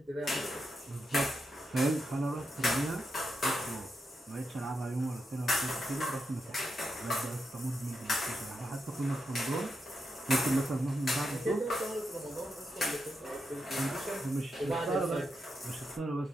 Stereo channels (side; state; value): both; normal; correlation 0.85